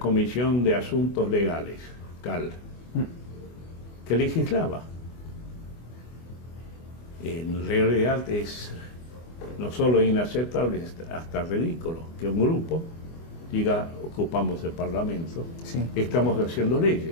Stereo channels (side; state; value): right; late; 24 ms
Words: de Asuntos Legales, CAL, que legislaba. En realidad es no solo inaceptable, hasta ridículo que un grupo diga: ocupamos el Parlamento, sí, estamos haciendo